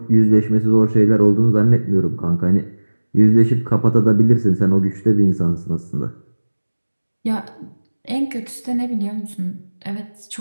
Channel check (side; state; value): both; inverted; correlation -1.00